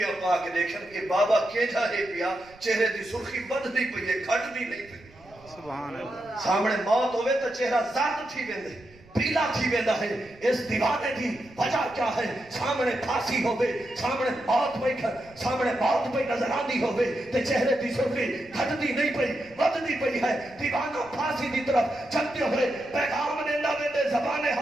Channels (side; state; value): right; noise; rumble, 25 dB below the sound